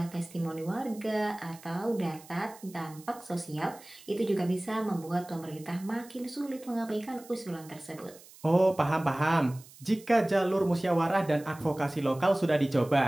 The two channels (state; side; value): noise; right; hiss, 22 dB below the sound